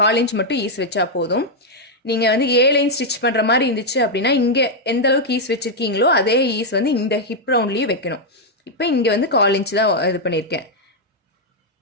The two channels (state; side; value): normal; both; correlation -0.01